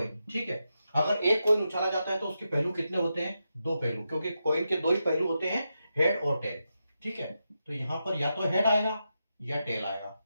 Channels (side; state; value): both; inverted; correlation -0.87